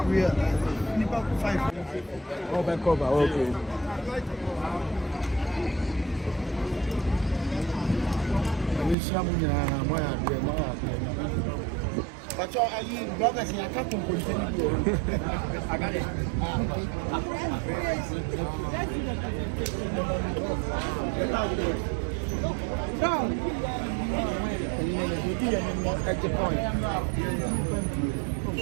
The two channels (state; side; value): drops out; left; at 9.0 s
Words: we are 5. Cover, okay. But are you brothers in a couple continue? I got it. At the point.